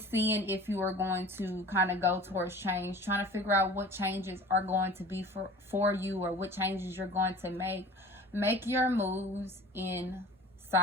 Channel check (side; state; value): both; normal; correlation 0.43